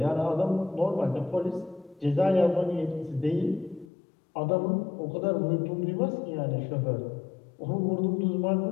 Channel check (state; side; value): drops out; right; at 3.9 s